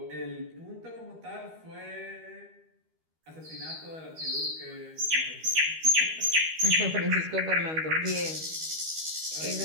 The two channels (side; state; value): left; late; 13 ms